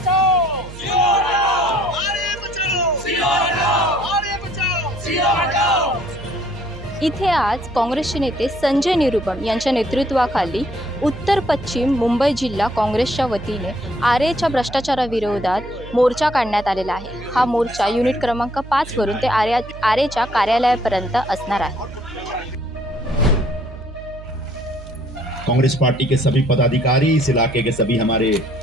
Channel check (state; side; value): noise; right; hum, 14 dB below the sound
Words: इथे आज काँग्रेसचे नेते संजय निरुपम यांच्या नेतृत्वाखाली उत्तर पश्चिम मुंबई जिल्हा काँग्रेसच्या वतीने आरेच्या भ्रष्टाचाराविरोधात मोर्चा काढण्यात आलेला आहे। हा मोर्चा युनिट क्रमांक 5 वरून ते आरेच्या कार्यालयापर्यंत असणार आहे। कांग्रेस पार्टी के सभी पदाधिकारी, इस इलाके के सभी हमारे